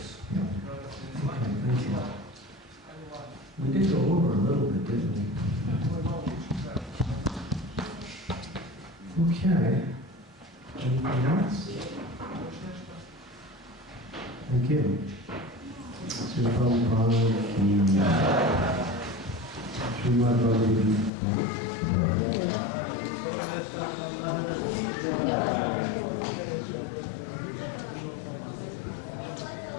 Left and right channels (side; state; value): right; drops out; at 21.1 s